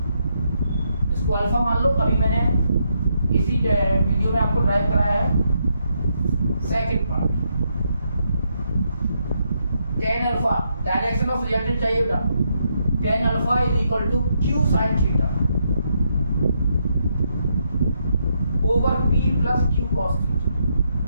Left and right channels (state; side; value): inverted; both; correlation -0.78